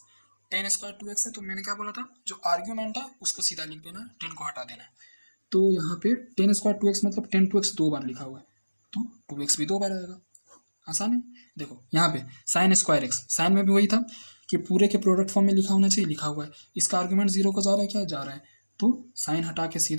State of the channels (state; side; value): inverted; both; correlation -1.00